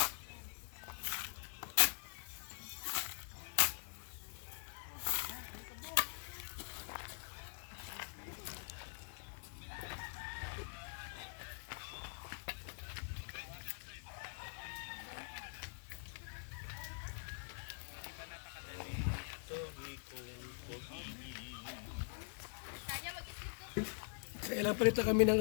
Kailan pa kami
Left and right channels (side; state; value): right; silent; digital silence